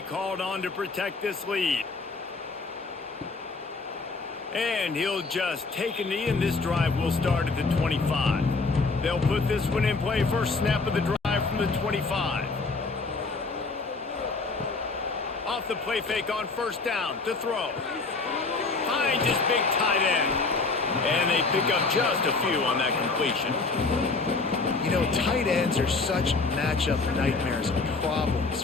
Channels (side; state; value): right; quieter; 3.9 dB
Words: called on to protect this lead. And he'll just take a knee, and this drive will start at the 25. They'll put this one in play. First snap of the drive from the 25. Off the play fake on 1st down to throw. Finds his big tight end. And they pick up just a few on that completion. You know, tight ends are such matchup nightmares and problems